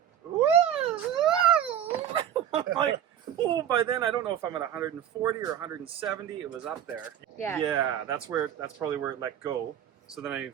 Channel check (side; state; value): left; quieter; 10.0 dB